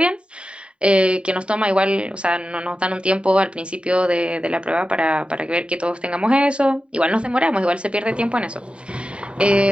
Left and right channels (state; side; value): late; left; 0.055 ms